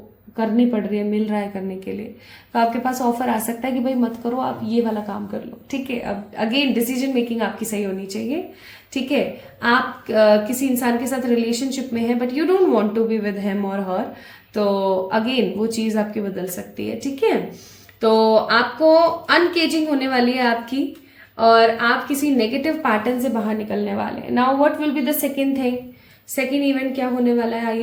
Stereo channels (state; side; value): identical; both; correlation 1.00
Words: पड़ रही है, मिल रहा है करने के लिए, तो आपके पास ऑफर आ सकता है कि भाई मत करो, आप ये वाला काम कर लो, ठीक है। अब अगेन डिसीजन मेकिंग आपकी सही होनी चाहिए, ठीक है। आप किसी इंसान के साथ रिलेशनशिप में है but you don't want to be with him और हर, तो अगेन वो चीज आपकी बदल सकती है, ठीक है। तो आपको अनकेजिंग होने वाली है आपकी, और आप किसी नेगेटिव पैटर्न से बाहर निकलने वाले हैं। Now what will be the second thing, second event क्या होने वाला है,